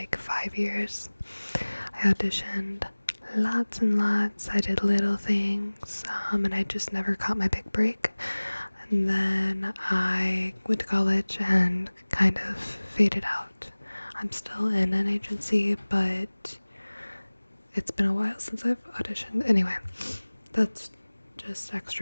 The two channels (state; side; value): inverted; both; correlation -1.00